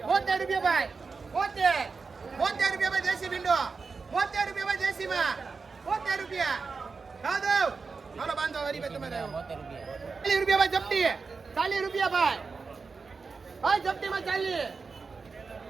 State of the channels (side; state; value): left; quieter; 4.7 dB